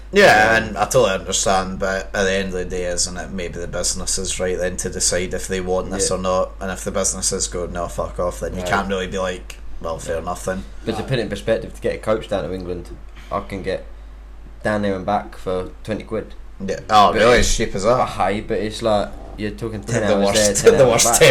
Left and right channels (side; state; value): both; identical; correlation 1.00